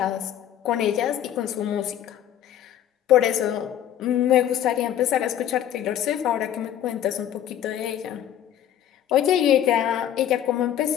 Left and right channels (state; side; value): quieter; right; 10.7 dB